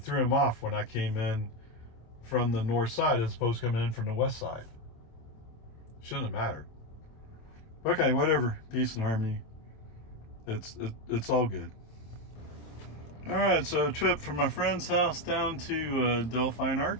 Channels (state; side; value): late; right; 26 ms